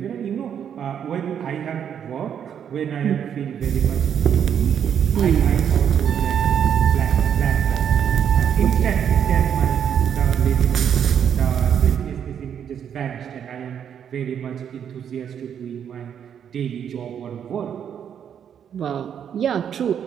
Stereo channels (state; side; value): quieter; left; 8.5 dB